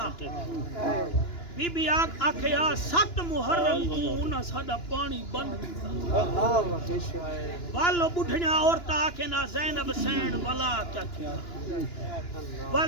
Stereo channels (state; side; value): late; right; 2.9 ms